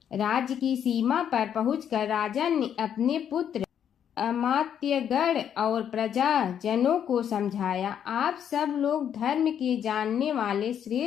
राज्य की सीमा पर पहुंचकर राजा ने अपने पुत्र अमात्यगण और प्रजाजनों को समझाया, आप सब लोग धर्म के जानने वाले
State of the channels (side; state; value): right; quieter; 9.0 dB